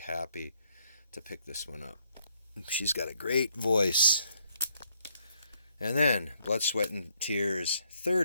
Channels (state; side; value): inverted; both; correlation -0.69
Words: to pick this one up. She's got a great voice. And then Blood, Sweat, and Tears'